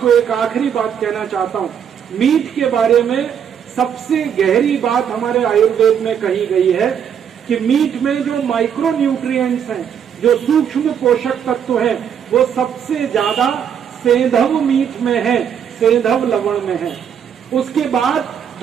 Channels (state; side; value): quieter; left; 8.2 dB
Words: एक आखिरी बात कहना चाहता हूं। मीट के बारे में सबसे गहरी बात हमारे आयुर्वेद में कही गई है कि मीट में जो माइक्रो न्यूट्रिएंट्स हैं, जो सूक्ष्म पोषक तत्व हैं, वो सबसे ज्यादा सेंधव मीट में है, सेंधव लवण में है। उसके बाद